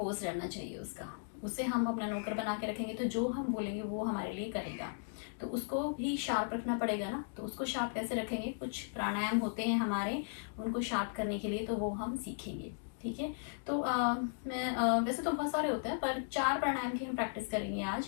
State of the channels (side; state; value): right; silent; digital silence